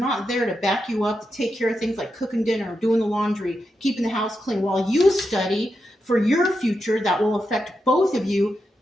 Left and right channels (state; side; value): normal; both; correlation 0.86